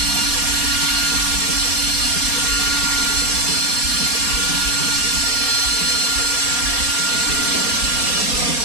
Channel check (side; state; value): left; late; 4.2 ms